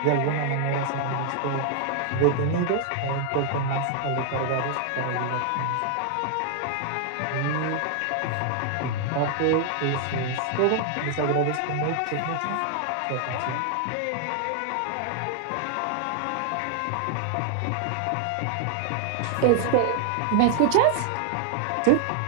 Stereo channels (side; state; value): both; different; correlation 0.00